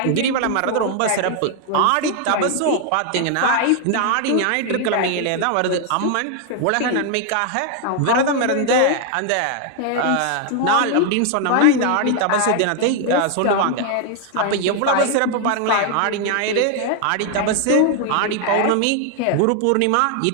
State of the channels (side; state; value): both; different; correlation 0.00